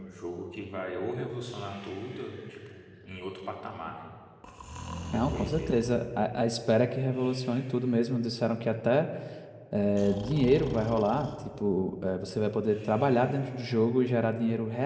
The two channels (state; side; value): identical; both; correlation 1.00